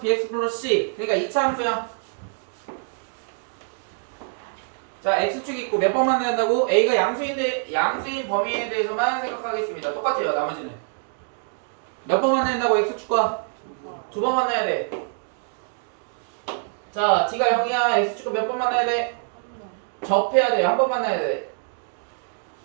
bx 플러스 c. 그러니까 2차 함수야. 자, x축이 있고 몇 번 만나야 한다고? a가 양수인데 양수인 범위에 대해서만 생각하겠습니다. 똑같아요, 나머지는. 몇 번 만나야 한다고? x축과? 두 번 만나야 돼. 자, d가 0이야. x축과 몇 번 만나야 돼? 접해야 돼. 한 번 만나야 돼.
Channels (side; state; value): left; silent; digital silence